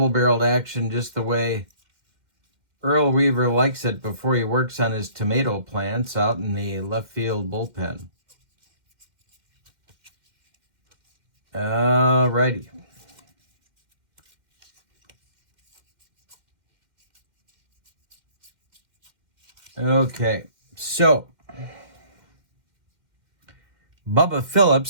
action, just the way Earl Weaver likes it before he works on his tomato plants out in the left field bullpen. Alrighty. Okay, so Bubba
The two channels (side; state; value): left; late; 2.1 ms